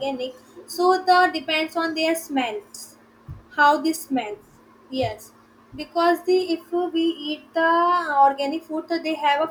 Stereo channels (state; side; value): identical; both; correlation 1.00